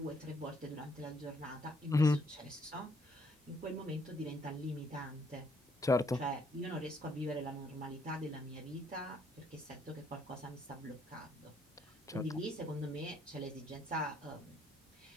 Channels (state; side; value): normal; both; correlation 0.69